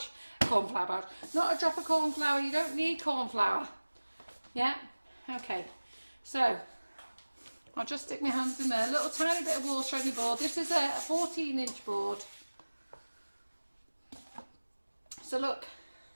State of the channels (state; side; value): inverted; both; correlation -1.00